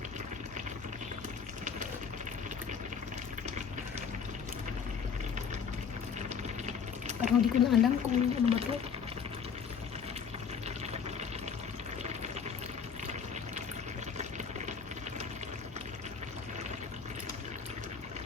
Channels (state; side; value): quieter; right; 6.6 dB